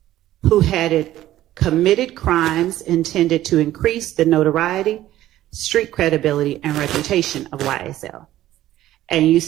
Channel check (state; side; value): quieter; left; 14.0 dB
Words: Who had committed crimes intended to increase the notoriety, street credibility, and reputation of YSL. And you